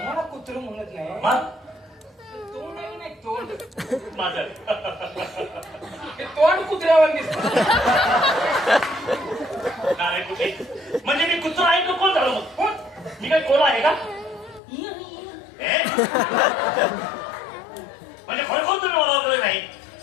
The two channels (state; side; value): drops out; right; at 14.6 s